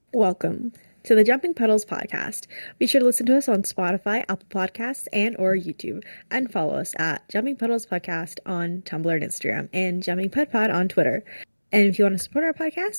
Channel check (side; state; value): both; inverted; correlation -1.00